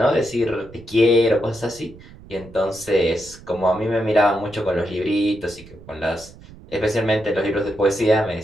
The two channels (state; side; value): noise; right; rumble, 20 dB below the sound